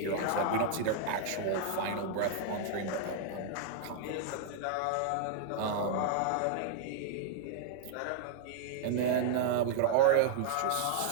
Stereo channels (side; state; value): both; different; correlation -0.01